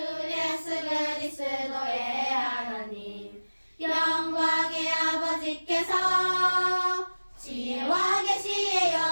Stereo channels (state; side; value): inverted; both; correlation -1.00